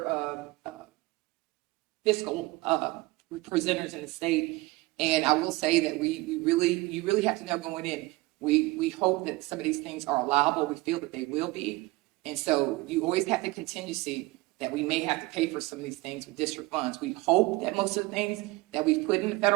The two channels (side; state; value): left; quieter; 21.4 dB